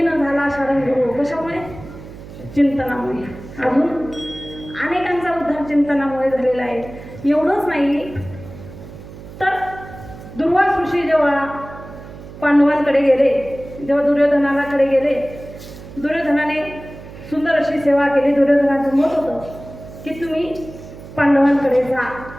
झाला शारंगधरू. कशामुळे? चिंतनामुळे. अजून अनेकांचा उद्धार चिंतनामुळे झालेला आहे. एवढंच नाही तर दुर्वास ऋषी जेव्हा पांडवांकडे गेले, जेव्हा दुर्योधनाकडे गेले, दुर्योधनाने सुंदर अशी सेवा केली. दुर्योधनाचं मत होतं की तुम्ही पांडवांकडे जा.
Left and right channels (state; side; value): noise; right; hum, 15 dB below the sound